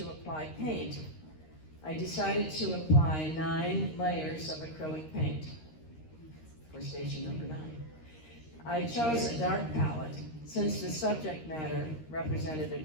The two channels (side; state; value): right; late; 13 ms